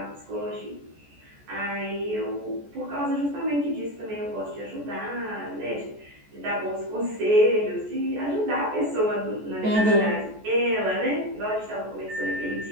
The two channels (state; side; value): late; left; 14 ms